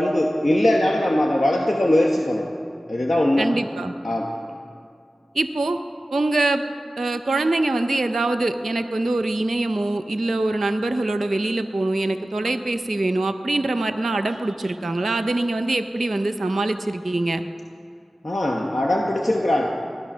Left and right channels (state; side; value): normal; both; correlation 0.95